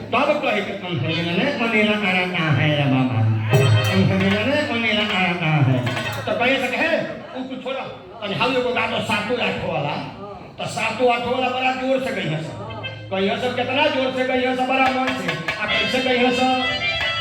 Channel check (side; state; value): both; identical; correlation 1.00